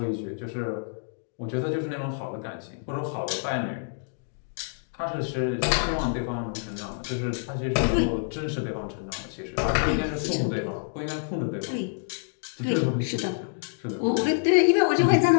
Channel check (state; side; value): silent; right; digital silence